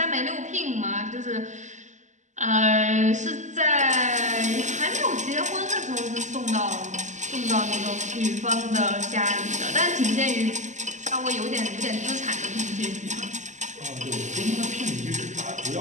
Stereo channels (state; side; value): late; left; 0.34 ms